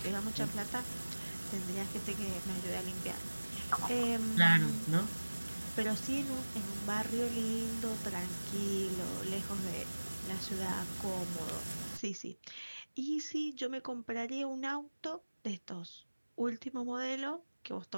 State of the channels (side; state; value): both; inverted; correlation -1.00